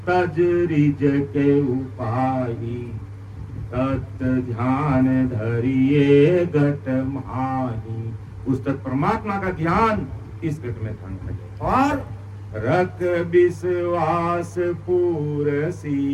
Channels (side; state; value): both; identical; correlation 1.00